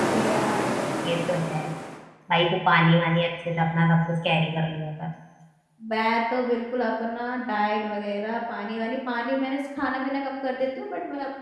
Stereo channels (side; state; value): both; identical; correlation 1.00